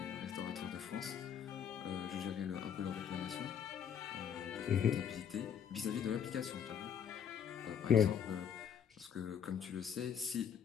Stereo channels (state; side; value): quieter; right; 8.3 dB